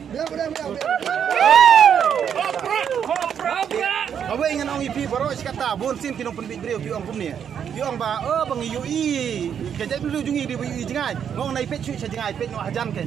Kau ingin orang ipi baru kata bon sin tinong penbik beliau piong kumni. Piong ba bang yui kerja dulu jungi di yui jengai. Ngong naik pet cuci jengai pet no hajan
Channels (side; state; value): left; quieter; 8.2 dB